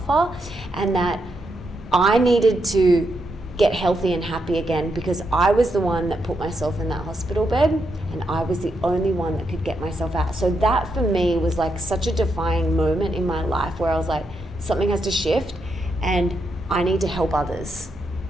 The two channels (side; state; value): both; normal; correlation 0.82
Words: And that I needed to get healthy and happy again, because I was the one that put myself in that hospital bed, and I was the only one that could get myself out. So that for me was like such a defining moment in my life, where I was like, something has to shift and I need to help others